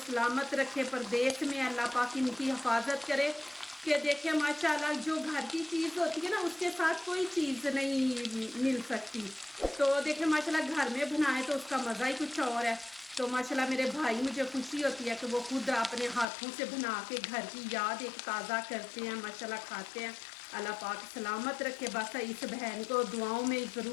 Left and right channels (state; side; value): drops out; right; at 16.2 s